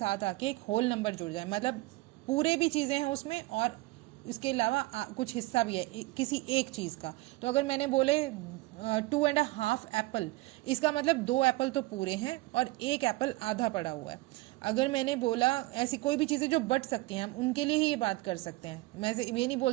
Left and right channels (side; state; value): left; quieter; 20.7 dB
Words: आके एक होल नंबर जुड़ जाए, मतलब पूरे भी चीजें हैं उसमें और इसके अलावा कुछ हिस्सा भी है किसी एक चीज का। तो अगर मैंने बोले 2.5 एप्पल, इसका मतलब 2 एप्पल तो पूरे हैं और 1 एप्पल आधा पड़ा हुआ है। अगर मैंने बोला ऐसी कोई भी चीज़ें जो बट सकती हैं, हम उनके लिए ही ये बात कर सकते हैं। मैं ये नहीं